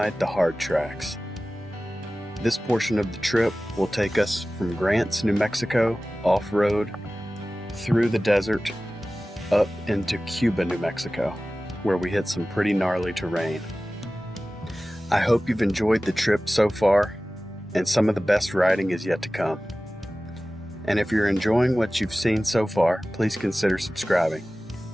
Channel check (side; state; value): both; normal; correlation 0.96